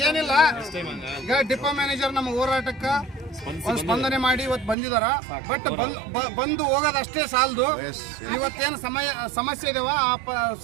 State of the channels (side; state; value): left; drops out; at 4.8 s